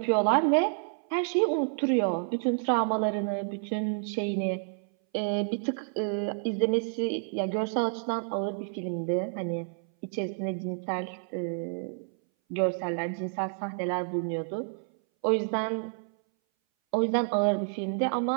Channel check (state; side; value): silent; left; 58 dB below the other